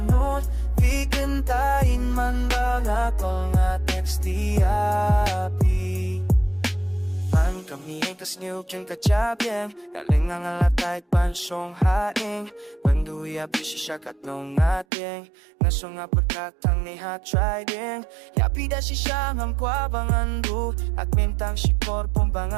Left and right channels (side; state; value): left; drops out; at 14.9 s